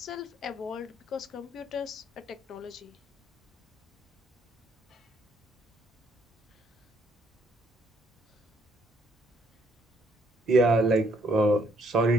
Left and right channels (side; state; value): both; normal; correlation 0.68